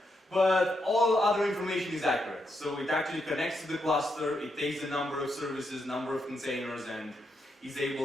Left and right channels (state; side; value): normal; both; correlation 0.81